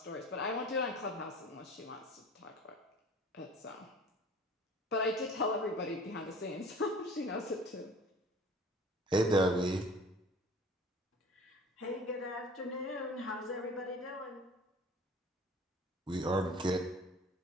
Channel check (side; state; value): both; normal; correlation 0.46